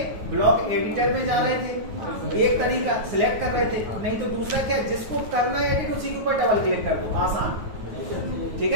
ब्लॉक एडिटर में जा रहे थे, एक तरीका सिलेक्ट कर रहे थे, नहीं तो दूसरा क्या, जिसको करना है एडिट उसी के ऊपर डबल क्लिक कर दो, आसान, ठीक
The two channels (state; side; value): late; left; 9.3 ms